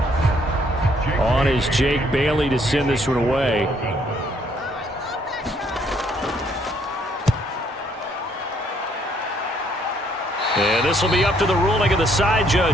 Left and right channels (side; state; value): both; normal; correlation 0.67